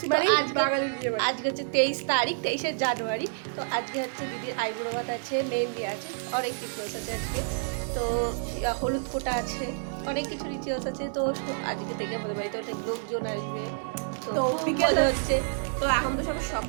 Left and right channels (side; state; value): left; silent; digital silence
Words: মানে বাঙালির বিয়ে বাড়ি। আজকে হচ্ছে 23 তারিখ, 23শে জানুয়ারি। তো আজকে হচ্ছে দিদির আইবুড়ো ভাত আছে, মেহেন্দি আছে, অনেক রিচুয়ালস আছে আজকে। তো হলুদ ফোঁটা আছে, অনেক কিছু রিচুয়ালস আছে। তো আজকে থেকে আমাদের বাড়িতে অনেক লোকজন আসবে। তো বিকেল হচ্ছে, তো এখন তো সব